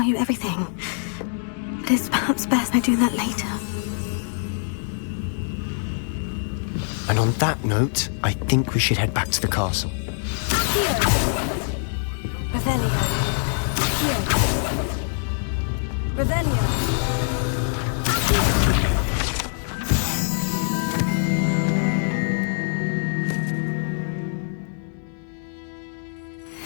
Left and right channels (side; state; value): right; silent; digital silence